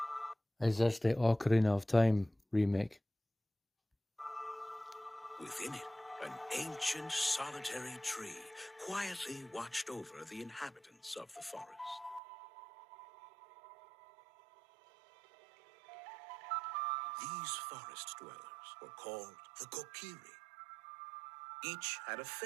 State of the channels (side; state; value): left; drops out; at 12.2 s